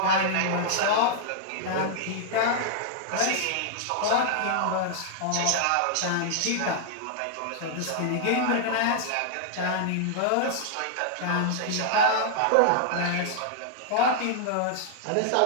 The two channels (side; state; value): both; different; correlation -0.01